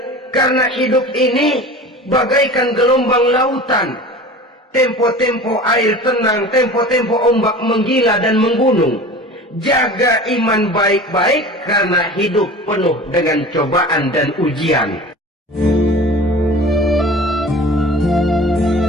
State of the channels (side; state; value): both; normal; correlation 0.38